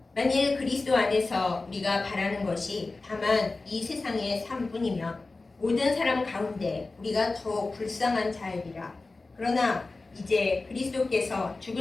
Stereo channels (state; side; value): quieter; right; 3.5 dB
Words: 만일 그리스도 안에서 우리가 바라는 것이 다만 이 세상의 삶뿐이면 모든 사람 가운데 우리가 더욱 불쌍한 자이리라. 그러나 이제 그리스도께서